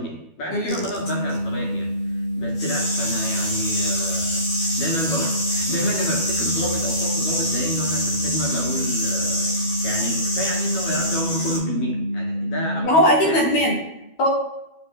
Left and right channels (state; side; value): late; right; 12 ms